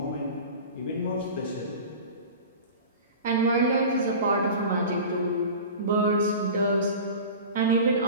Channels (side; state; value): both; inverted; correlation -0.36